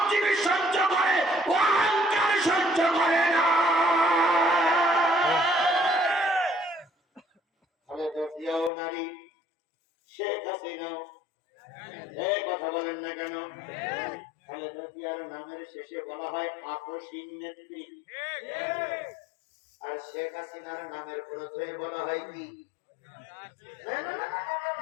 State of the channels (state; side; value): drops out; right; at 8.7 s